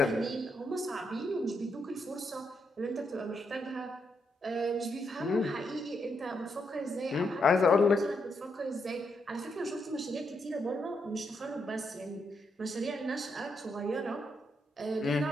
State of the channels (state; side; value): normal; both; correlation 0.80